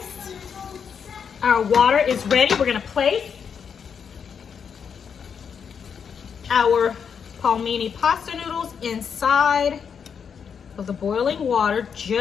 our water is ready. We're gonna place our palmini pasta noodles inside of the boiling water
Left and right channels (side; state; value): right; quieter; 6.9 dB